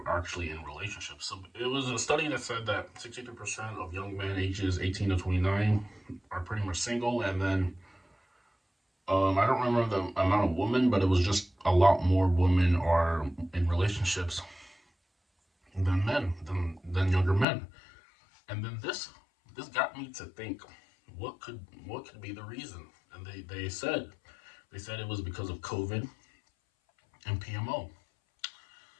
actually in relationships. So it was a study that said that 63% of young men ages 18 to 29 are pretty much single, and then I don't remember the amount of women, but it was just a lot more women are in relationships than than younger men. And then this got me to think, what could be the reason? And they said it was because of COVID and PMO.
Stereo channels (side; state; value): right; drops out; at 17.4 s